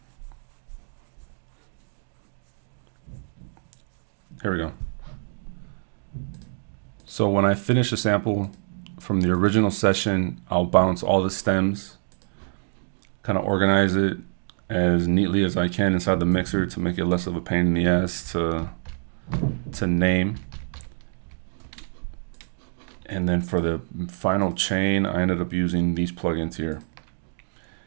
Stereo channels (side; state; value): left; silent; digital silence